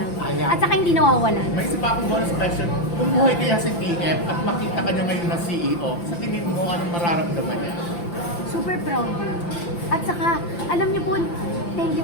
Ayan. At saka hindi nawawalan. May isa pa akong bonus question. Kung buhay kaya si TF at makita ka niya ngayon na CEO, sa tingin mo anong mararamdaman niya? Super proud yun. At saka, alam niyo po, thank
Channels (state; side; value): late; right; 5.8 ms